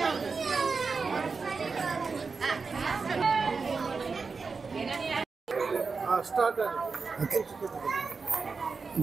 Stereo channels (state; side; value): quieter; left; 4.7 dB